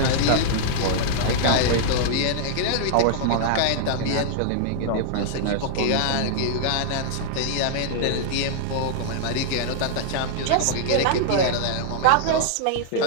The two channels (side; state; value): both; different; correlation -0.01